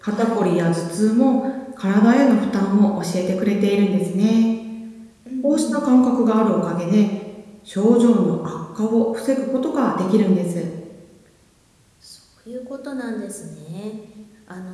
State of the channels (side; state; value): both; identical; correlation 1.00